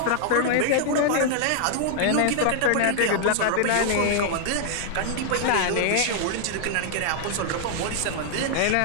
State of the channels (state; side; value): different; both; correlation 0.00